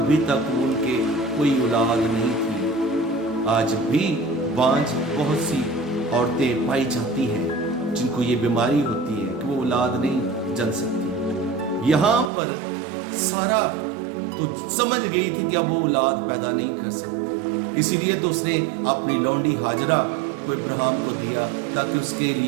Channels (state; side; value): drops out; left; at 12.3 s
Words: तक उनके कोई औलाद नहीं थी। आज भी बांझ बहुत सी औरतें पाई जाती हैं जिनको ये बीमारी होती है कि वो औलाद नहीं जन सकती। यहाँ पर सारा तो समझ गई थी कि अब वो औलाद पैदा नहीं कर सकती, इसीलिए तो उसने अपनी लौंडी हाजरा को इब्राहिम को दिया ताकि उसके